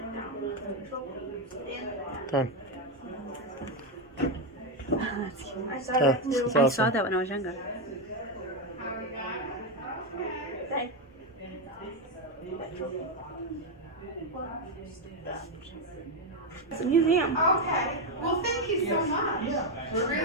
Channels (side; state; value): both; normal; correlation 0.06